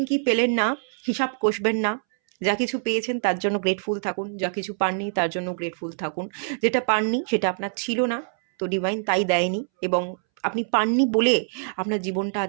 কি পেলেন না হিসাব কষবেন না, যা কিছু পেয়েছেন তার জন্য গ্রেটফুল থাকুন, যা কিছু পাননি তার জন্য গ্রেটফুল থাকুন। যেটা পাননি সেটা আপনার ছিল না, তো ডিভাইন তাই দেয়নি, এবং আপনি পাননি বলে আপনার জীবনটা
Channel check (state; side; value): silent; left; 62 dB below the other